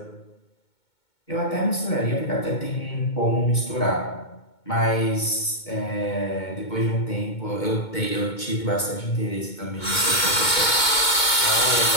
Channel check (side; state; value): right; late; 2.2 ms